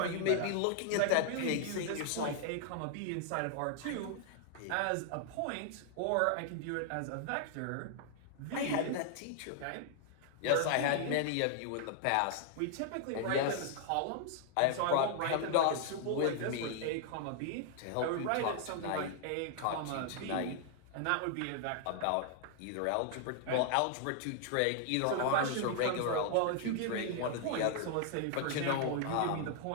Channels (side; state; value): both; different; correlation 0.00